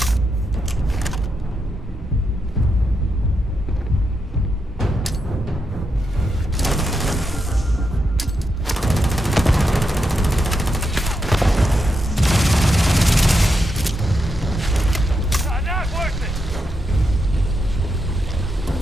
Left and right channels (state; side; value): normal; both; correlation 0.84